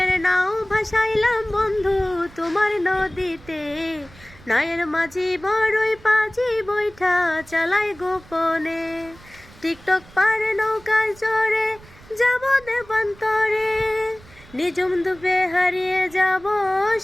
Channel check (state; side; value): noise; right; rumble, 23 dB below the sound